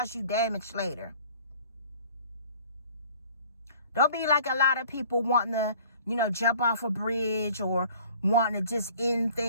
you damage later. Don't be like a lot of people wanting to, you know, jump off a bridge, or wanting to just end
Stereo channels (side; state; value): both; inverted; correlation -0.51